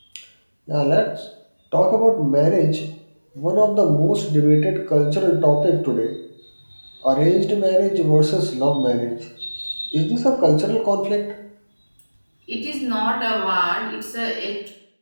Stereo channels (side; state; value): both; inverted; correlation -1.00